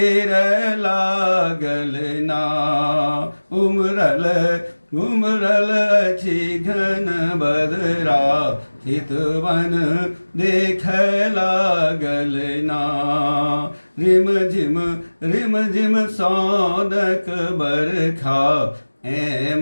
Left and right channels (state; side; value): inverted; both; correlation -1.00